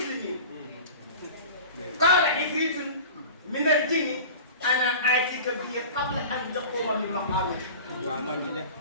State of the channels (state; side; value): inverted; both; correlation -0.37